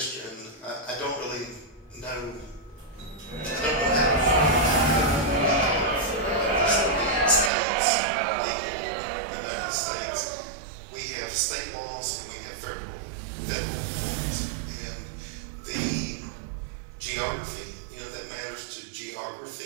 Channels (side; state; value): left; drops out; at 7.5 s